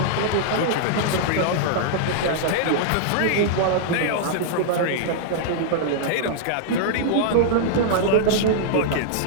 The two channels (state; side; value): different; both; correlation -0.01